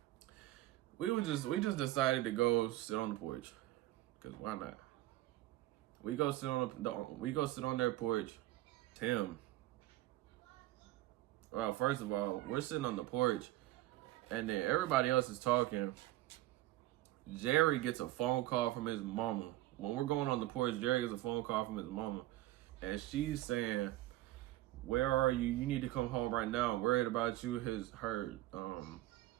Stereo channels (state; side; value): quieter; left; 16.5 dB